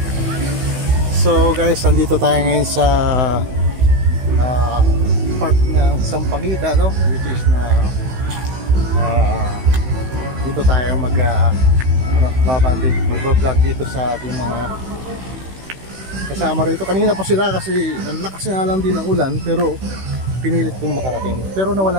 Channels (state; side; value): late; left; 16 ms